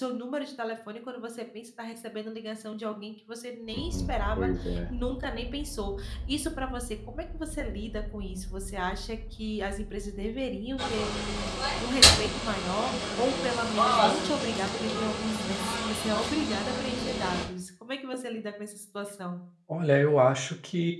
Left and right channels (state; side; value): identical; both; correlation 1.00